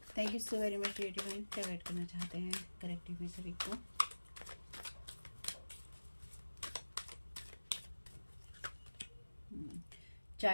Thank you so very much dear divine. क्या गाइड करना चाहते हैं कलेक्टिव में सभी को।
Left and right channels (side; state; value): both; inverted; correlation -1.00